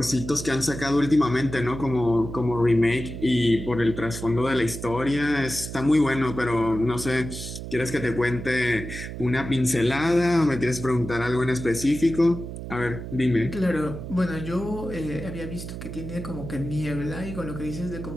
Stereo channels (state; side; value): noise; right; hum, 9 dB below the sound